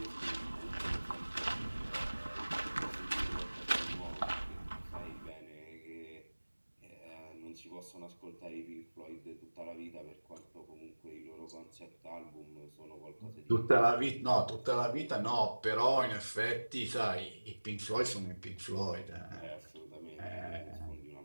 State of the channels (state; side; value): inverted; both; correlation -1.00